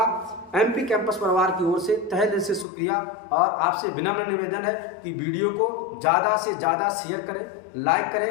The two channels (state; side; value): drops out; right; at 2.7 s